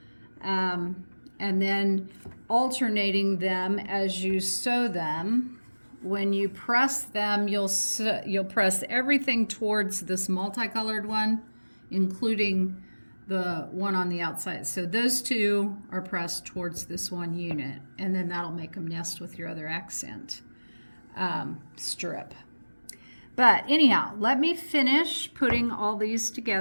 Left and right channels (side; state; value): both; inverted; correlation -1.00